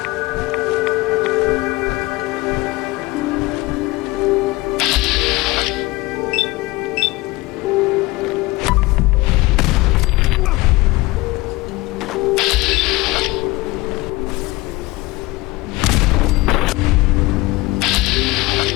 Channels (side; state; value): right; quieter; 21.3 dB